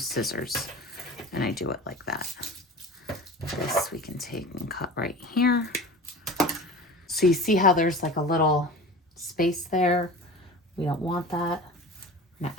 scissors. And I do it like that. This we can take and cut right here. So you see how there's like a little space there? We don't want that. I'm gonna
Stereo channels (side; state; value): both; normal; correlation 0.35